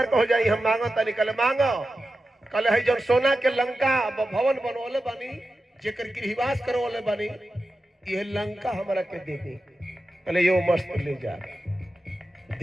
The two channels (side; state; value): both; normal; correlation 0.92